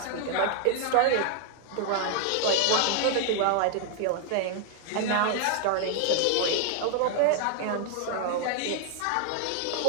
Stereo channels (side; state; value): both; different; correlation 0.00